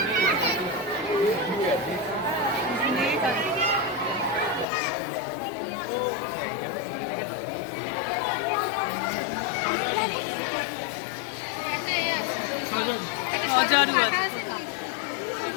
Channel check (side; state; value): right; drops out; at 4.7 s